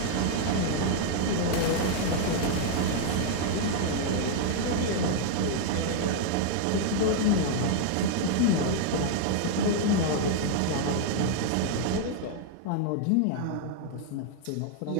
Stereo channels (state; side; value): different; both; correlation 0.00